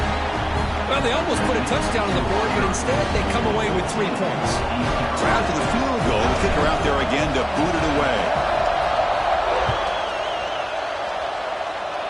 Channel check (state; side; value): identical; both; correlation 1.00